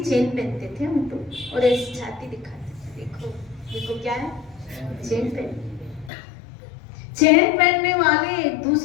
चेन पहनते थे हम तो, और ऐसी छाती दिखाते थे। देखो देखो क्या है, चेन पहन। चेन पहनने वाले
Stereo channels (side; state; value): right; drops out; at 6.1 s